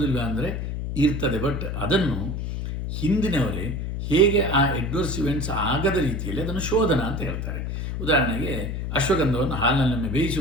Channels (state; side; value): noise; left; hum, 3 dB below the sound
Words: ಅಂದರೆ ಇರ್ತದೆ. ಬಟ್ ಅದನ್ನು ಹಿಂದಿನವರೇ ಹೇಗೆ ಆ ಅಡ್ವರ್ಸ್ ಇವೆಂಟ್ಸ್ ಆಗದ ರೀತಿಯಲ್ಲಿ ಅದನ್ನು ಶೋಧನ ಅಂತ ಹೇಳ್ತಾರೆ. ಉದಾಹರಣೆಗೆ ಅಶ್ವಗಂಧವನ್ನು ಹಾಲಿನಲ್ಲೊಮ್ಮೆ ಬೇಯಿಸಿ